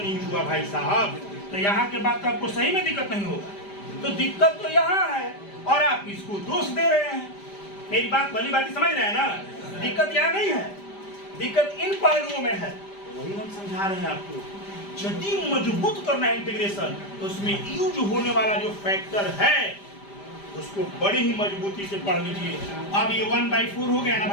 यूज हुआ भाई साहब, तो यहाँ के बाद तो आपको सही में दिक्कत नहीं होगा। तो दिक्कत तो यहाँ है, और आप इसको दोष दे रहे हैं। मेरी बात भली बात समझ रहे हैं ना, दिक्कत यहाँ नहीं है, दिक्कत इन पहलुओं में है। वही हम समझा रहे हैं आपको। यदि मजबूत करना है इंटीग्रेशन, तो उसमें यूज होने वाला जो फैक्टर है उसको बड़ी ही मजबूती से पढ़ लीजिए। अब ये 1/4 हो गया ना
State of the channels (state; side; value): late; right; 5.0 ms